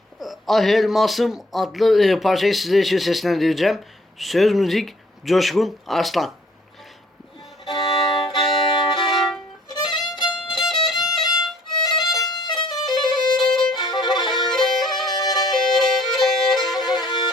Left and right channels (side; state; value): both; normal; correlation 0.60